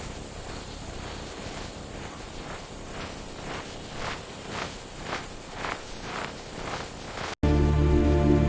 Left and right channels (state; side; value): identical; both; correlation 1.00